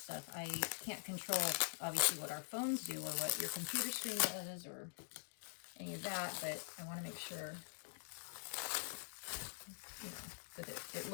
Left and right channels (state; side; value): silent; right; digital silence